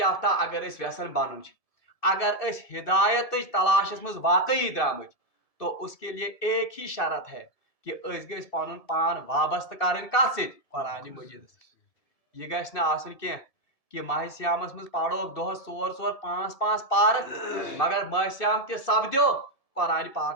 اگر اس یژھان بنُن چھ اگر اس ہدایتٕچ تلاشس مز واقعی درامٕتۍ تو اس کے لیے ایک ہی شرط ہے کہ اس گژھِ پنن پان وابستہ کرٕنۍ کتھ سۭتۍ قرآن مجیدس سۭتۍ. یہ گژھِ نہٕ آسُن کینٛہہ کہ ماہ سیامس مز پڑھوکھ دۄہس ژور ژور پانٛژھ پانٛژھ پارٕ مگر ماہ سیام تہ سپدیو قرآن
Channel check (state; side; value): late; right; 1.7 ms